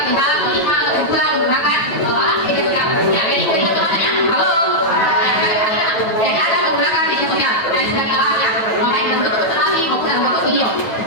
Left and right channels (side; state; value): right; late; 9.2 ms